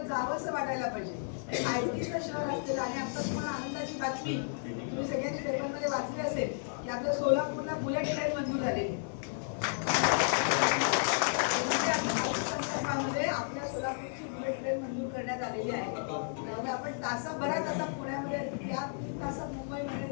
जावंसं वाटायला पाहिजे. आयटीचं शहर असलेलं आणि आता तुम्हाला आनंदाची बातमी तुम्ही सगळ्यांनी पेपरमध्ये वाचली असेल की आपल्या सोलापूरला बुलेट ट्रेन मंजूर झालेली. आपल्या सोलापूरची बुलेट ट्रेन मंजूर करण्यात आलेली आहे. त्यामुळे आपण तासाभरात आता पुण्यामध्ये या 3 तासात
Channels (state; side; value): silent; right; digital silence